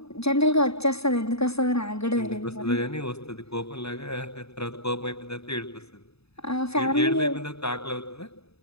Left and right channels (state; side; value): late; right; 0.79 ms